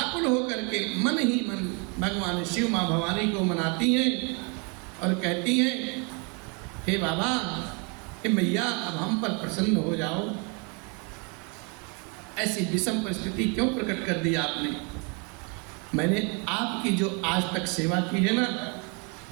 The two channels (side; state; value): left; quieter; 33.5 dB